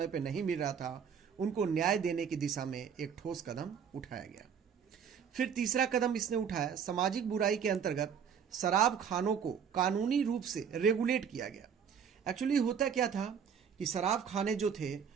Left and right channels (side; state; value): left; quieter; 7.4 dB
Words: पर नहीं मिल रहा था, उनको न्याय देने की दिशा में एक ठोस कदम उठाया गया। फिर तीसरा कदम इसने उठाया, सामाजिक बुराई के अंतर्गत शराब खानों को कानूनी रूप से रेगुलेट किया गया। एक्चुअली होता क्या था कि शराब खाने जो थे